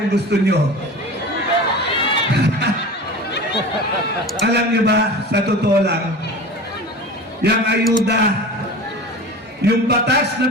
gusto nyo? Alam niyo ba, sa totoo lang, yung ayuda, yung batas na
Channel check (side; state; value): both; normal; correlation 0.34